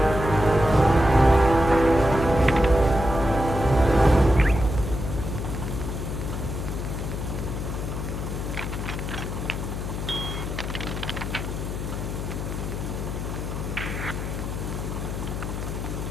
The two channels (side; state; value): left; noise; hum, 4 dB below the sound